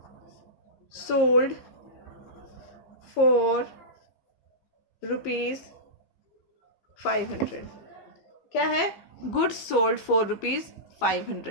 सोल्ड फॉर ₹500। क्या है? Goods sold for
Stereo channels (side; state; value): right; late; 15 ms